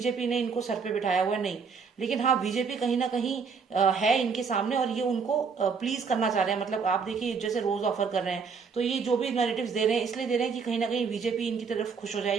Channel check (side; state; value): left; quieter; 5.5 dB